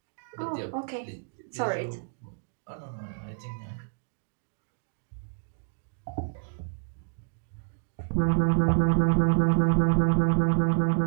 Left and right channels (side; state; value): left; silent; digital silence